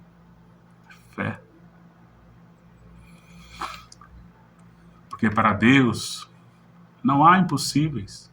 Fé. Porque para Deus não há impossíveis.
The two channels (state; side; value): identical; both; correlation 1.00